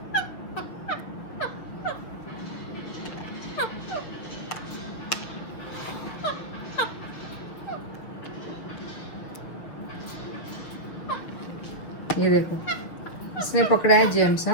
ये देखो, इसने पकड़ा है जेम्स।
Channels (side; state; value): right; late; 6.2 ms